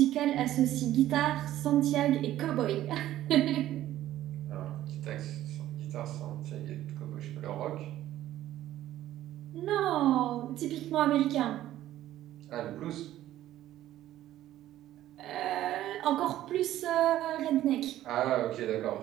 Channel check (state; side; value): quieter; left; 13.5 dB